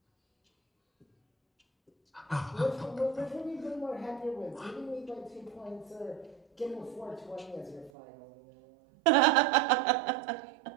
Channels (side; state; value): left; drops out; at 7.9 s